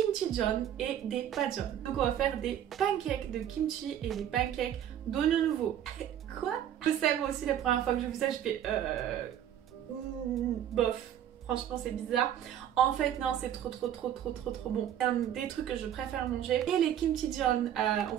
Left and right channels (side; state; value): left; quieter; 10.5 dB